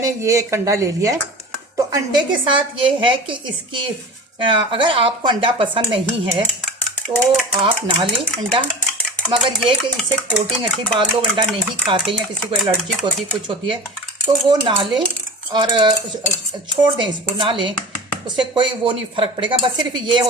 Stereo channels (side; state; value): both; normal; correlation 0.34